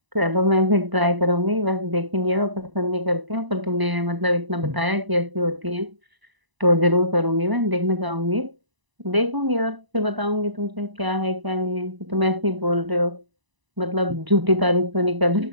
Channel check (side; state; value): left; late; 1.0 ms